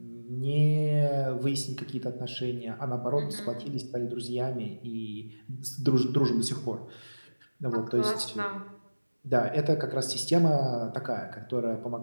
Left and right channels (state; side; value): inverted; both; correlation -1.00